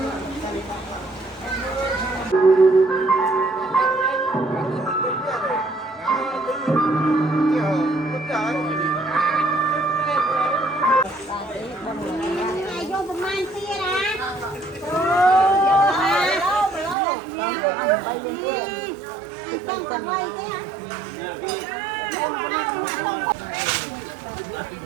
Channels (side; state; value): left; drops out; at 16.9 s